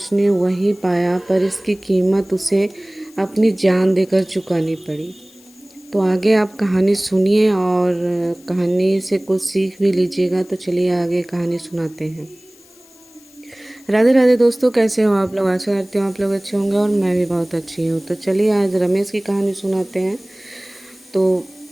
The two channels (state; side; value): noise; left; hiss, 27 dB below the sound